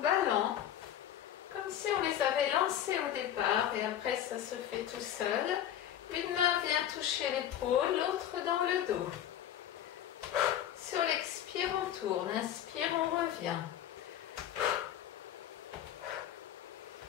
comme si on les avait lancés au départ et après ça se fait tout seul. Une main vient toucher l'épaule, l'autre dans le dos. Sur l'expire, on tourne. Inspire, on revient.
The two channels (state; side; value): quieter; right; 11.0 dB